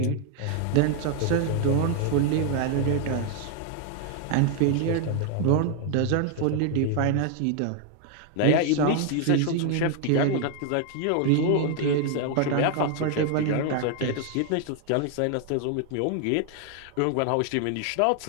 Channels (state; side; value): different; both; correlation 0.00